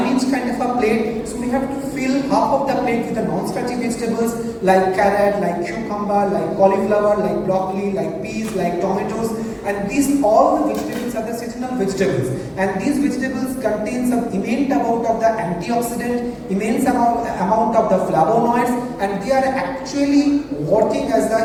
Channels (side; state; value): both; identical; correlation 1.00